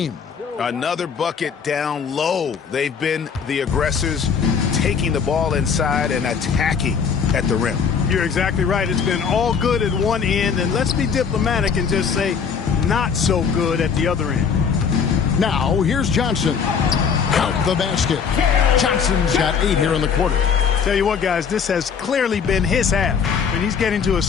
Another bucket down low. They've been the aggressors, taking the ball inside and attacking at the rim. You're exactly right. It's been all good at one end, and let's be diplomatic and just say not so good at the other end. Now, here's Johnson. Out the basket. Johnson's got 8 here in the quarter. Tell you what, guys, this has clearly been his half. And he's getting to his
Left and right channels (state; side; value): quieter; right; 6.5 dB